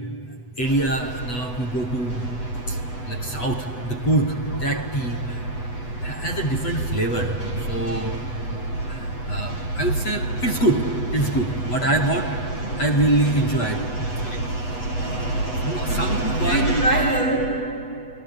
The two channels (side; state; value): right; late; 8.1 ms